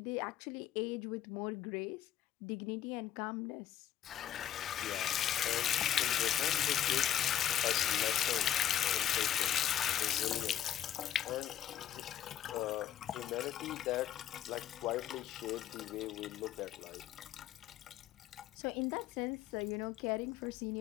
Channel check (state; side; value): quieter; right; 11.1 dB